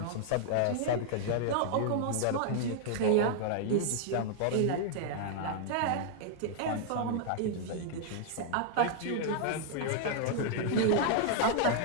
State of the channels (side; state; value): both; different; correlation 0.00